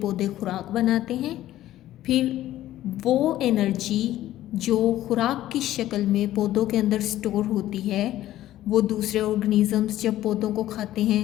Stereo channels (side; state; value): right; quieter; 13.9 dB